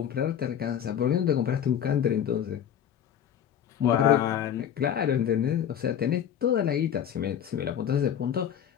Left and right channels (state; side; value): quieter; right; 9.3 dB